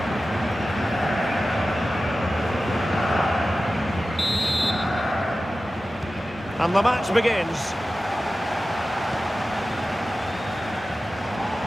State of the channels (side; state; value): both; normal; correlation 0.95